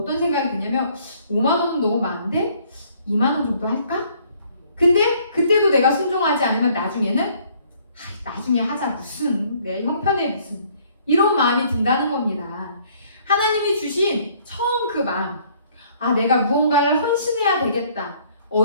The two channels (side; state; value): both; inverted; correlation -0.61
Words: 생각이 드냐면 5만 원은 너무 많은데 2만 원 정도 할까? 근데 그때도 내가 순종하지 않으면 나중에는 나중에 하자, 무슨 내 형편에 무슨, 이런 마음이 든다는 겁니다. 하나님이 주신 처음 그 마음, 내가 무언가를 헌신해야 되겠다,